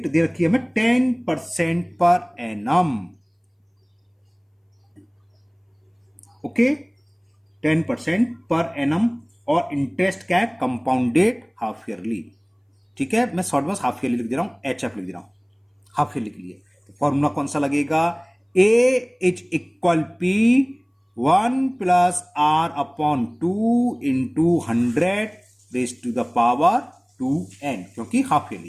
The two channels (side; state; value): both; identical; correlation 1.00